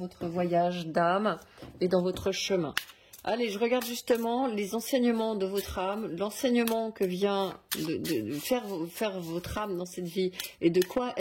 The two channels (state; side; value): identical; both; correlation 1.00